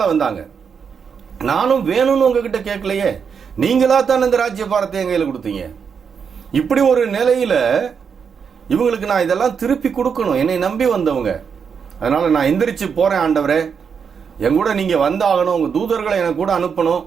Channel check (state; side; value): quieter; left; 6.5 dB